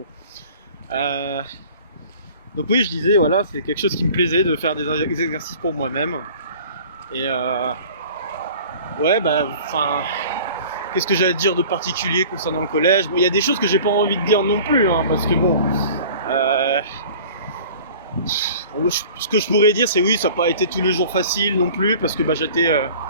Donc oui, je disais, voilà, c'est quelque chose qui me plaisait de faire des exercices pour moi-même. Et ouais, qu'est-ce que j'allais dire de particulier concernant le collège. Bon, il y a des choses que j'ai pas envie de dire non plus, hein, parce que bon, ce que je pourrais dire, c'est oui, ça n'a pas été tous les jours facile non plus, parce que j'étais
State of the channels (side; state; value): both; inverted; correlation -0.45